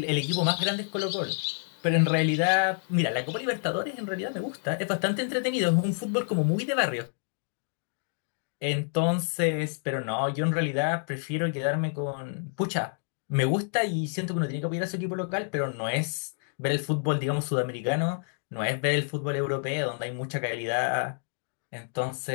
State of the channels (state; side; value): silent; right; 59 dB below the other